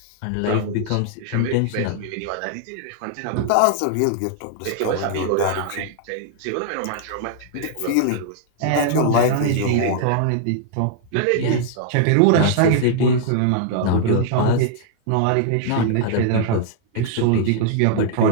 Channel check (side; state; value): both; different; correlation -0.01